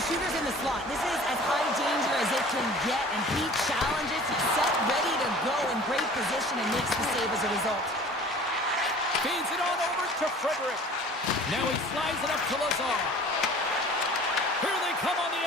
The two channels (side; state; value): both; normal; correlation 0.46